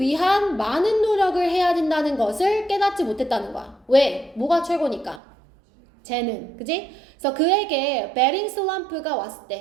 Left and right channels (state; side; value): drops out; left; at 5.2 s